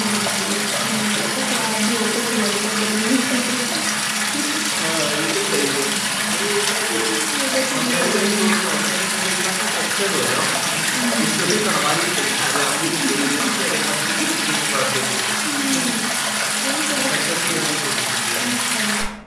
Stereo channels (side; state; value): both; identical; correlation 1.00